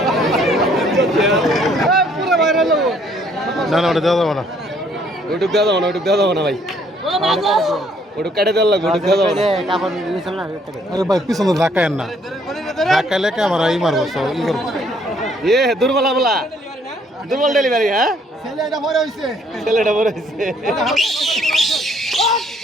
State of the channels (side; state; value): both; normal; correlation 0.64